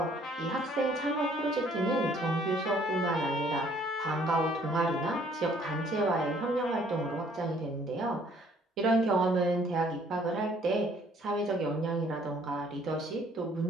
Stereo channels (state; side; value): normal; both; correlation 0.61